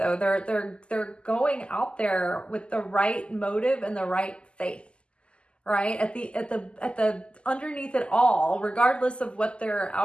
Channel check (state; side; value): late; right; 0.052 ms